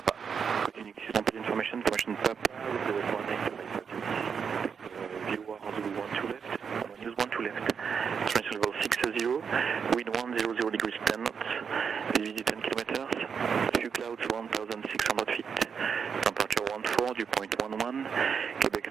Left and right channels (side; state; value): left; quieter; 6.6 dB